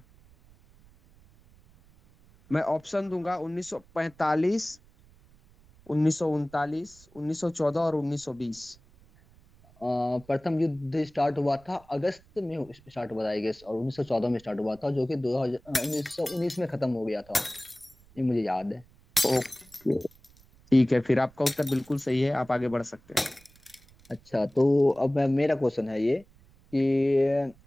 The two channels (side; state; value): right; noise; rumble, 27 dB below the sound